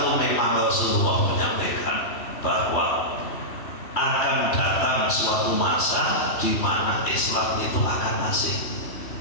memang Rasulullah menyampaikan bahwa akan datang suatu masa di mana Islam itu akan asing,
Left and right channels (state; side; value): late; right; 3.1 ms